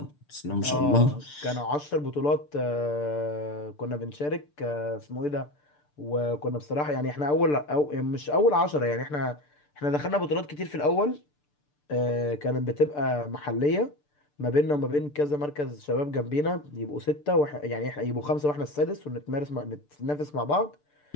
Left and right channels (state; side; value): late; right; 6.8 ms